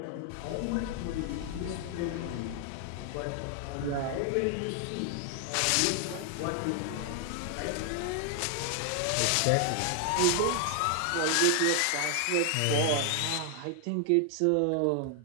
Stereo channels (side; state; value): both; different; correlation 0.00